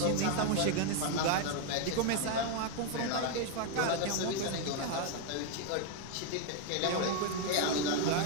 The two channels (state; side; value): different; both; correlation 0.01